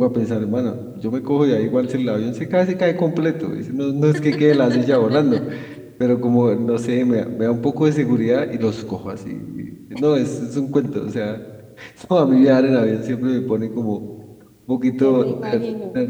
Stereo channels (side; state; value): both; identical; correlation 1.00